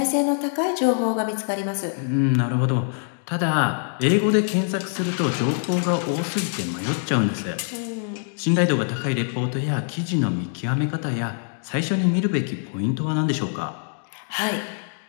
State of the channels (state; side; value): silent; right; digital silence